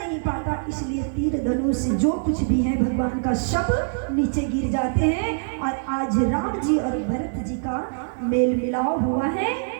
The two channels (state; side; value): silent; left; digital silence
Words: पाता, इसलिए तीर धनुष जो कुछ भी है भगवान का सब नीचे गिर जाते हैं। और आज राम जी और भरत जी का मेल मिलाव हुआ है।